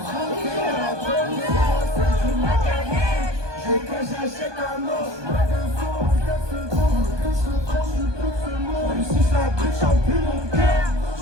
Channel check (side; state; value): left; late; 1.2 ms